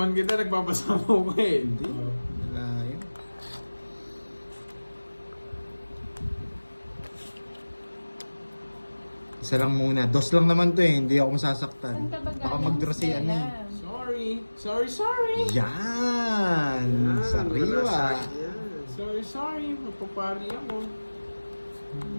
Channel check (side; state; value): both; inverted; correlation -1.00